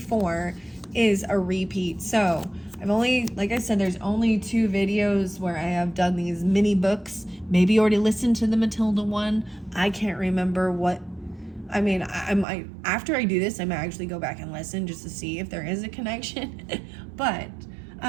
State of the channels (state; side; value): drops out; left; at 12.5 s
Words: is a repeat. So I've only, like I said, there's only 2 videos where I have done these mini books. Maybe you already listened to the Matilda one. I can't remember what. After I do this, I might actually go back and listen just to see if there is a connection. But